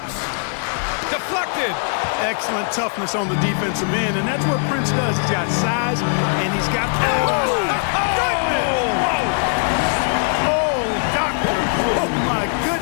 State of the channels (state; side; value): silent; right; 59 dB below the other